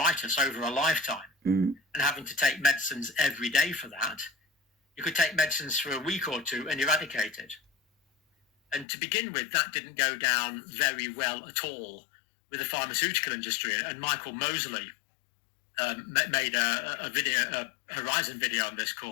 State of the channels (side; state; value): right; drops out; at 8.8 s